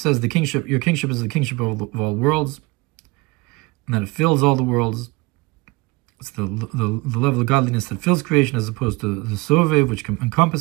the kingship, your kingship is the kingship of all worlds, and that it fills all the worlds. It's the level of godliness that fills creation as opposed to the Sovev, which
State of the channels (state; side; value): quieter; left; 23.9 dB